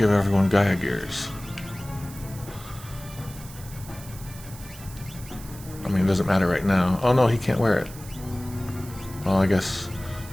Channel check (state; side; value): noise; right; hiss, 17 dB below the sound